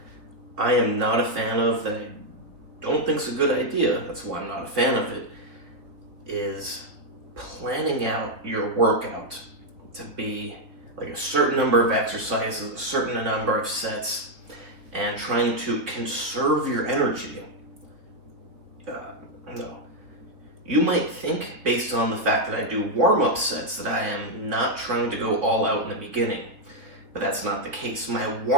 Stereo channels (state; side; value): late; left; 3.4 ms